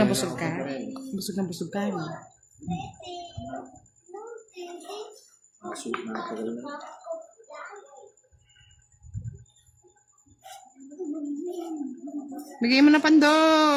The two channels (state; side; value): identical; both; correlation 1.00